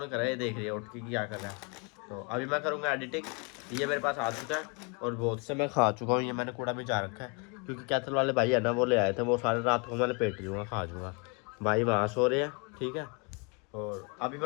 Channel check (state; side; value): quieter; right; 32.4 dB